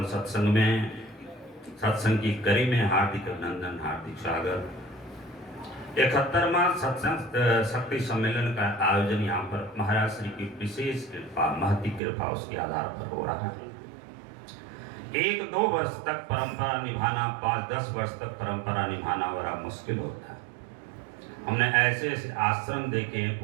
सत्संग में, सत्संग की कड़ी में हार्दिक अभिनंदन, हार्दिक स्वागत। 71वां सत्संग शक्ति सम्मेलन का आयोजन यहाँ पर महाराज श्री की विशेष कृपा, महती कृपा उसके आधार पर हो रहा है। 1-2 वर्ष तक परंपरा निभाना, 5-10 वर्ष तक परंपरा निभाना बड़ा मुश्किल होता है। हमने ऐसे ऐसे आश्रम देखे हैं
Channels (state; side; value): drops out; left; at 12.0 s